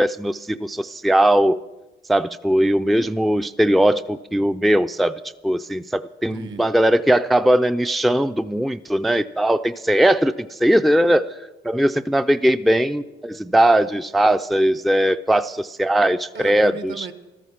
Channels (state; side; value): normal; both; correlation 0.95